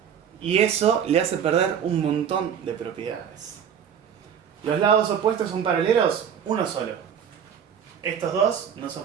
Y eso le hace perder un montón de propiedades. ¿Los lados opuestos son paralelos? Uno solo. Estos dos no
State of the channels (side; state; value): left; quieter; 8.2 dB